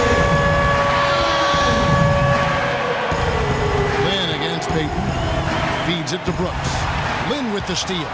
Feeds it to Brooks. Lynn with the steal.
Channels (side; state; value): both; identical; correlation 1.00